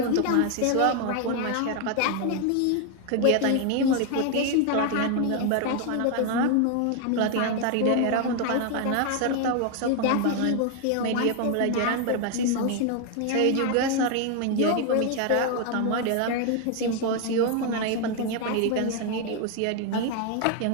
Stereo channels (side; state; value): both; different; correlation 0.01